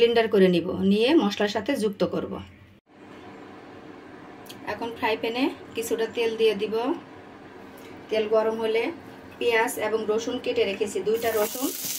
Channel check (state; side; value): identical; both; correlation 1.00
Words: করে নিব, নিয়ে মশলার সাথে যুক্ত করব। এখন ফ্রাই প্যানে কিছুটা তেল দিয়ে দিব। তেল গরম হলে পেঁয়াজ এবং রসুন কেটে রেখেছি, 2টা রসুন